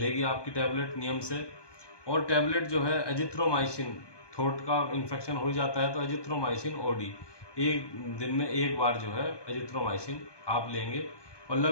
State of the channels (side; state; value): right; late; 1.2 ms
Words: आपकी टैबलेट नियम से। और टैबलेट जो है एजिथ्रोमाइसिन, थ्रोट का इन्फेक्शन हो जाता है तो एजिथ्रोमाइसिन OD, एक दिन में एक बार जो है एजिथ्रोमाइसिन आप लेंगे और